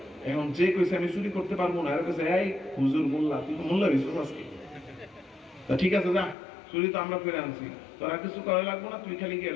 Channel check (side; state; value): right; drops out; at 6.4 s